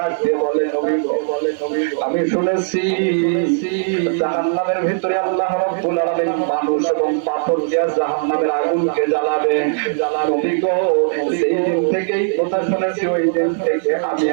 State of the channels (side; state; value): left; silent; digital silence